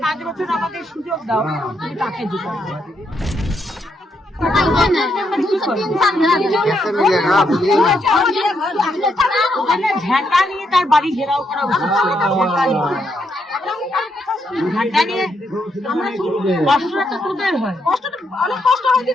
5 বছর আমাদের সুযোগ দাও তুমি তাকে জেতাবে? ঝাঁটা নিয়ে তার বাড়ি ঘেরাও করা উচিত। ঝাঁটা নিয়ে কষ্টটা তো তোদের হয়,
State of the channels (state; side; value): normal; both; correlation 0.78